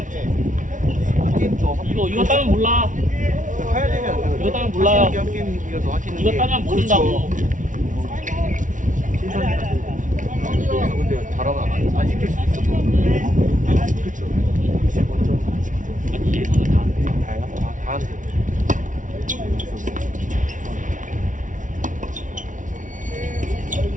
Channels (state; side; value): late; left; 0.37 ms